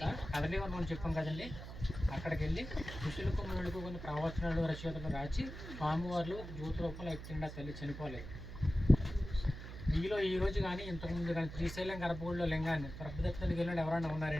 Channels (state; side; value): noise; right; hum, 10 dB below the sound